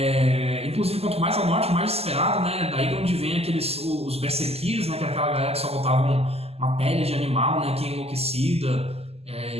Inclusive, quanto mais ao norte, mais desesperado, né? Daí de onde vem os berserkers, né? Que é aquela galera que só botavam uma pele de animal, né? Que é enlouquecida.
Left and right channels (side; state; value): left; late; 0.29 ms